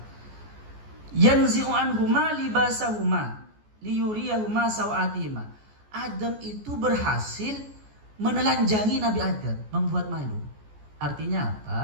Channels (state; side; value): late; left; 14 ms